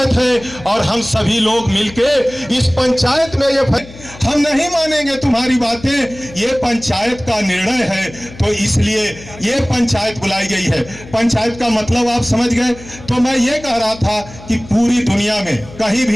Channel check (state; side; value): noise; left; hum, 18 dB below the sound